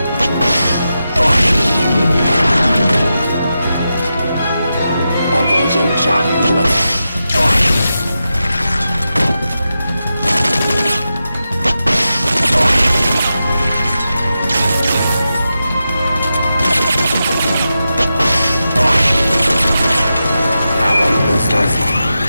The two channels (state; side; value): inverted; both; correlation -0.90